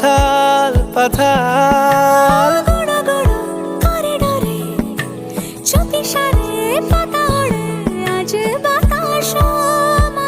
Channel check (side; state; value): both; identical; correlation 1.00